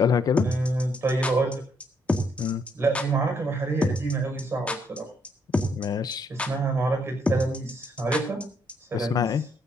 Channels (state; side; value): normal; both; correlation 0.72